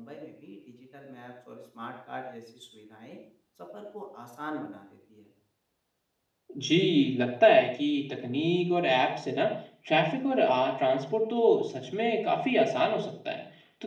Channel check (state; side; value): identical; both; correlation 1.00